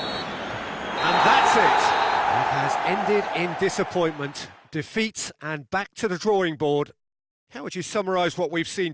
And that's it. It has ended in disappointment, defeat, and back to the drawing board. How would you summarise what we've seen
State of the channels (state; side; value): identical; both; correlation 1.00